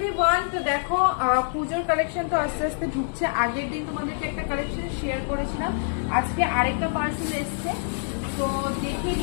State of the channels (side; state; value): right; silent; digital silence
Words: Everyone, তো দেখো পুজোর কালেকশন তো আস্তে আস্তে ঢুকছে। আগের দিন তোমাদেরকে একটা কালেকশন শেয়ার করেছিলাম, আজকে আরেকটা পার্সেল এসছে। তো দেখিয়ে